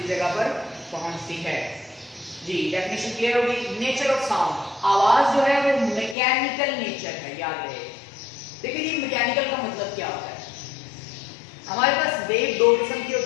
जगह पर पहुंचती है। जी डेफिनेशन क्लियर होगी। नेचर ऑफ साउंड, आवाज जो है वो मैकेनिकल नेचर है, याद रहे। देखिए ये मैकेनिकल का मतलब क्या होता है? हमारे पास वेव 2 किस्म की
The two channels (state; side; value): drops out; right; at 6.2 s